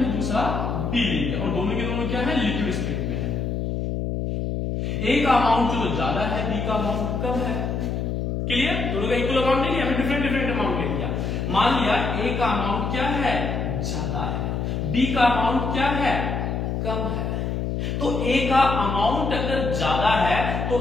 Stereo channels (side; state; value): left; noise; hum, 2 dB below the sound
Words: दूसरा बी ले लिया, और दोनों के दोनों क्या है, लिक्विड स्टेट में है। ए का अमाउंट जो ज्यादा है, बी का अमाउंट कम है। क्लियर? दोनों का इक्वल अमाउंट नहीं लिया, हमने डिफरेंट डिफरेंट अमाउंट ले लिया। मान लिया ए का अमाउंट क्या है, ज्यादा है, बी का अमाउंट क्या है, कम है। तो ए का अमाउंट अगर ज्यादा है तो